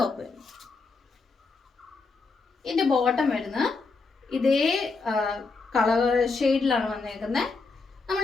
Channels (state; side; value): quieter; right; 4.1 dB